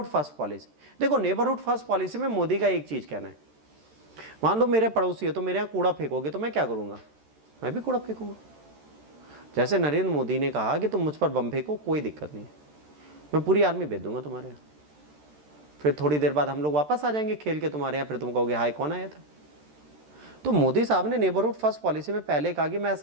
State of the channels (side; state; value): left; late; 13 ms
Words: फर्स्ट पॉलिसी, देखो नेबरहुड फर्स्ट पॉलिसी में मोदी का एक चीज कहना है, मान लो मेरे पड़ोसी है तो मेरे यहाँ कूड़ा फेंकोगे तो मैं क्या करूंगा, मैं भी कूड़ा फेंकूंगा। जैसे नरेंद्र मोदी ने कहा कि तुम मुझ पर बम फेंको, कोई दिक्कत नहीं है, मैं पूरी आर्मी भेज दूंगा तुम्हारे यहाँ, फिर थोड़ी देर बाद हम लोग वापस आ जाएंगे खेल के तुम्हारे यहाँ, फिर तुम कहोगे हाय कौन आया था। तो मोदी साहब ने नेबरहुड फर्स्ट पॉलिसी में पहले कहा कि मैं